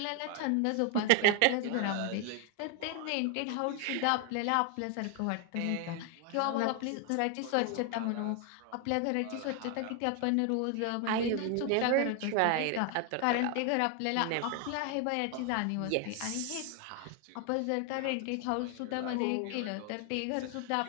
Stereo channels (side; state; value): both; different; correlation 0.01